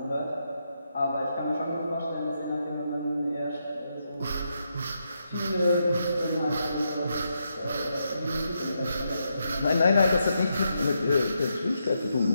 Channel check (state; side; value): inverted; both; correlation -0.82